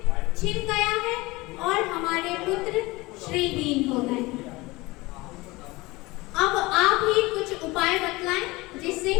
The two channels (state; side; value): quieter; right; 21.8 dB